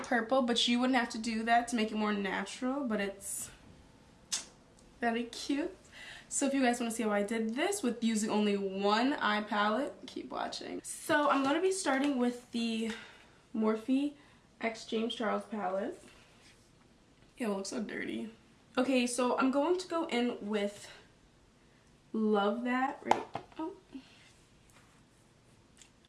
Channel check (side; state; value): both; identical; correlation 1.00